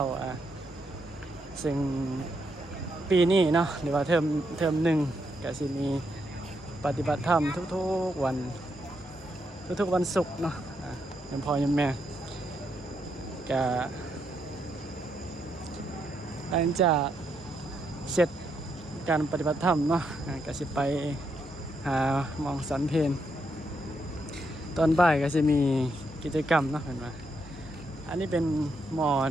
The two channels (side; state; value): both; normal; correlation 0.79